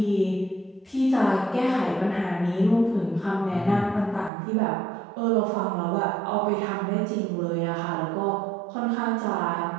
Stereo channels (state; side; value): drops out; left; at 4.3 s